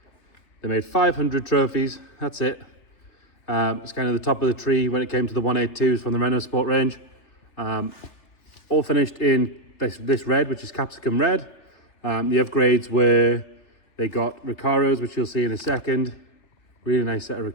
they made 500 trophies. That's it. It's kind of the top of the tree when it came to the 182s from the Renault Sport range. All finished in this red, which is capsicum red. The upgrades were they got Recaros, which you'll see in a second. Really nice set of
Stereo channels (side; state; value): right; late; 3.3 ms